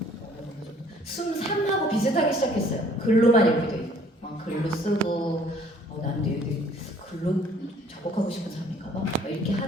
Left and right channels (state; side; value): normal; both; correlation 0.58